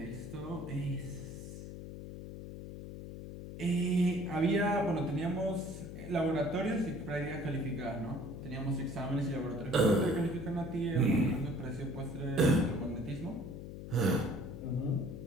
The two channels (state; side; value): noise; left; hum, 10 dB below the sound